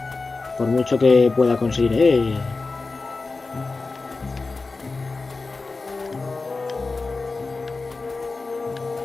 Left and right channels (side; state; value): right; quieter; 3.9 dB